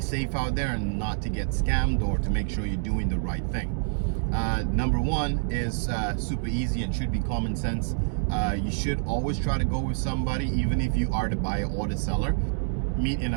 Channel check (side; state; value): left; silent; digital silence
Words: out there and not to get scammed, or to make sure you're doing the right thing. Number 1 is super easy and should be common sense. You should always try to go with somebody, even if you are the buyer or the seller. Meet in